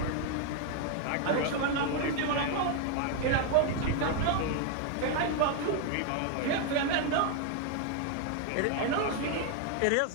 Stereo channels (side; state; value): both; different; correlation 0.00